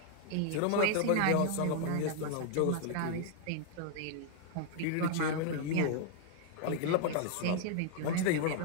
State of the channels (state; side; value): different; both; correlation 0.00